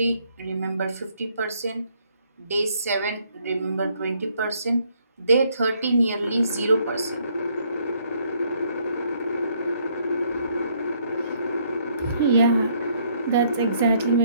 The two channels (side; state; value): both; inverted; correlation -0.68